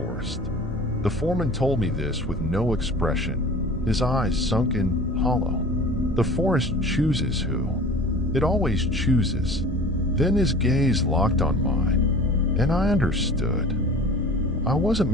The foreman told me this with no expression, his eyes sunken hollow. The forest chooses who. It always chooses. Then his gaze locked on mine, and I understood. I wasn't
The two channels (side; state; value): both; normal; correlation 0.41